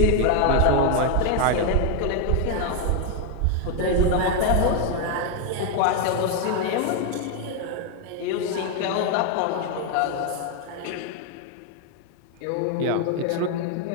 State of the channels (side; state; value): both; different; correlation 0.01